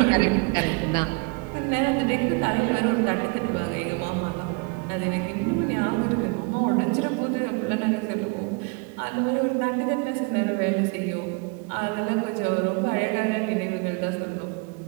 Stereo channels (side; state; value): left; quieter; 30.9 dB